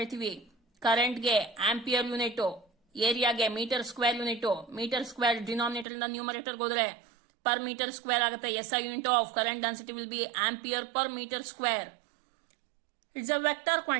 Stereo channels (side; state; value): left; drops out; at 5.9 s